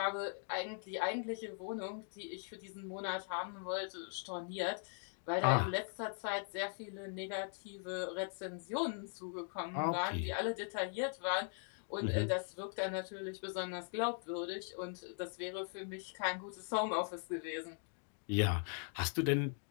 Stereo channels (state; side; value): silent; right; 51 dB below the other